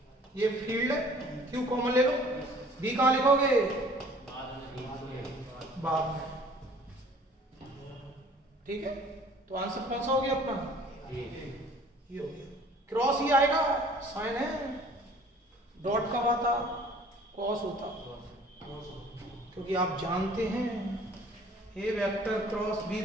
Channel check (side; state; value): both; normal; correlation 0.52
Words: ये फील्ड है, Q कॉमन ले लो, B कहां लिखोगे? बाद में। ठीक है, तो आंसर कौन सा हो गया अपना? ये हो गया। क्रॉस ही आएगा, साइन है, डॉट कब आता? कॉस होता, क्योंकि आप जानते हैं A vector cross B